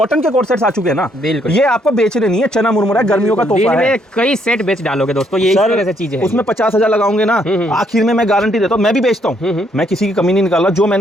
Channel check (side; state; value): both; normal; correlation 0.71